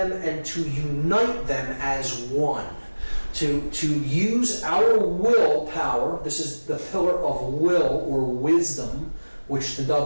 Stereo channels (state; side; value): inverted; both; correlation -1.00